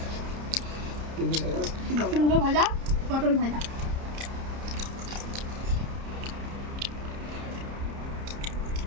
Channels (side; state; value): left; late; 30 ms